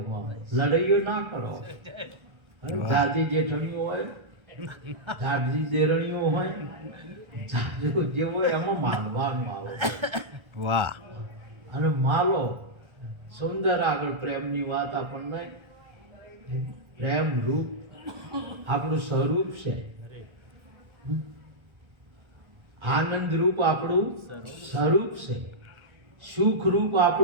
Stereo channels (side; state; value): left; late; 1.3 ms